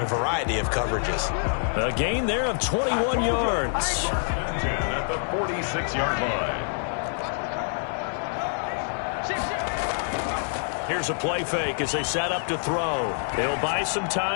variety of coverages. A gain there of 21 yards. At the 46-yard line. Here's a play fake as they set up to throw. He'll buy some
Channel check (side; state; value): right; silent; 61 dB below the other